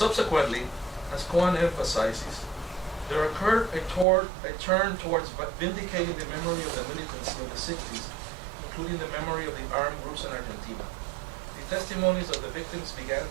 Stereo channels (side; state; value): left; drops out; at 4.0 s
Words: as Cohen emphasizes, there occurred a turn towards vindicating the memory of the militancy of the 60s, including the memory of the armed groups in Argentina. The testimonies of the victims began